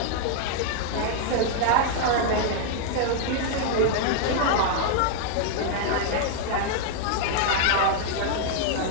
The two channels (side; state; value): both; different; correlation -0.01